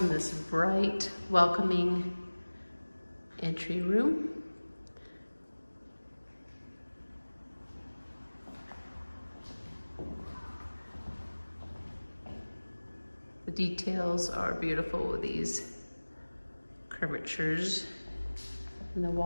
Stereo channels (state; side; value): inverted; both; correlation -1.00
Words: and this bright, welcoming entry room. The details are beautiful with these curvatures in the